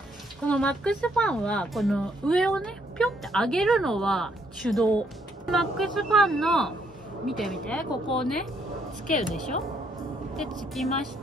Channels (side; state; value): both; normal; correlation 0.71